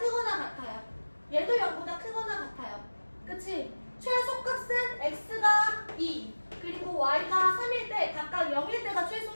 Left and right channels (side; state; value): both; inverted; correlation -1.00